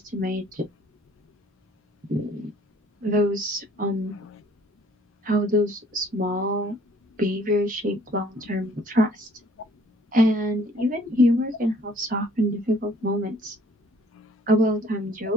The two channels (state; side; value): normal; both; correlation 0.58